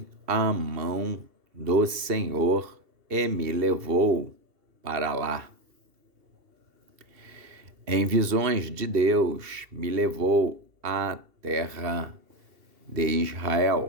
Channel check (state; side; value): late; left; 2.7 ms